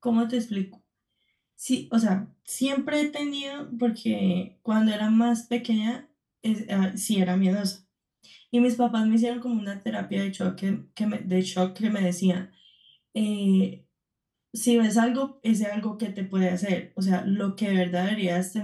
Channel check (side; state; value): both; identical; correlation 1.00